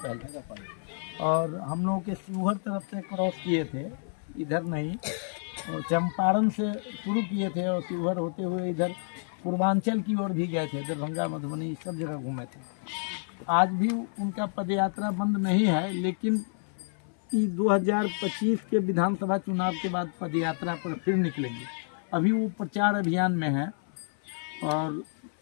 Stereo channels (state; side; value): silent; right; 57 dB below the other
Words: पहले, और हम लोगों के शिवहर तरफ से क्रॉस किए थे, इधर नहीं, और चंपारण से शुरू किए थे और शिवहर होते हुए इधर पूर्वांचल की ओर भी गए थे, दरभंगा, मधुबनी, सब जगह घूमे थे। आज भी उनका पदयात्रा बंद नहीं है, लेकिन 2025 के विधानसभा चुनाव के बाद पदयात्रा पर फिर निकलेंगे। अभी वो प्रचार अभियान में है और